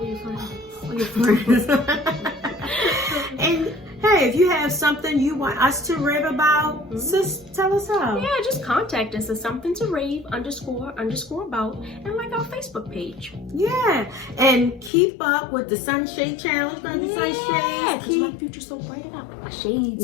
Your friends. And hey, if you have something you want us to rave about, sis, tell us how. Yeah, just contact us at something to rave _ about and like our Facebook page. Yeah, and keep up with the Sunshade Challenge. Yeah, because my future's so bright. I got my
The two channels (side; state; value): right; drops out; at 14.9 s